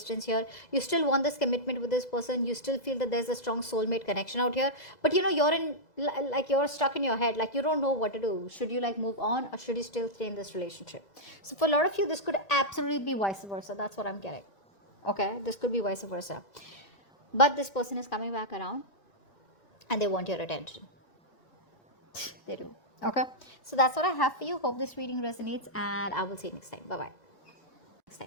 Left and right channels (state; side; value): late; right; 2.0 ms